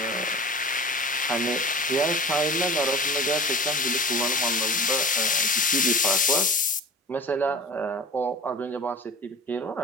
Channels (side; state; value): both; normal; correlation 0.38